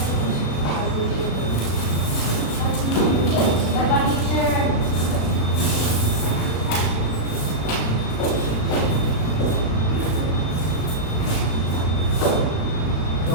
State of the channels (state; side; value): late; right; 36 ms